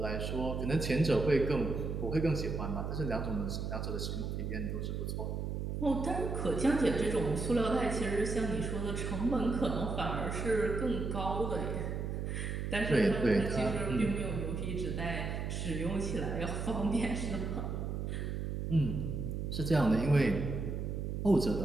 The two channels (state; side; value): noise; right; hum, 3 dB below the sound